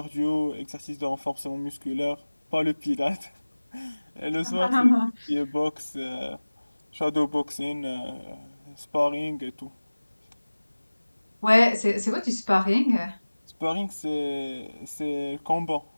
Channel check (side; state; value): both; inverted; correlation -1.00